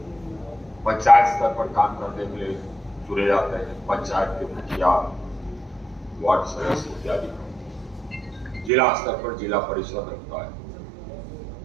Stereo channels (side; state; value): left; drops out; at 8.7 s